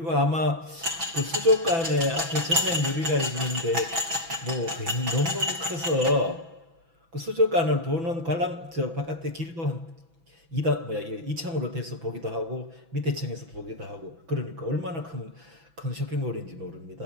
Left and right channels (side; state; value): left; late; 6.0 ms